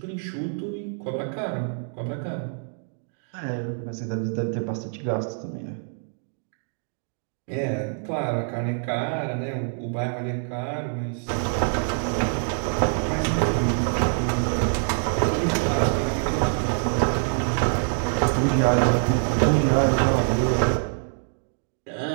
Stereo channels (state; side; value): silent; left; 55 dB below the other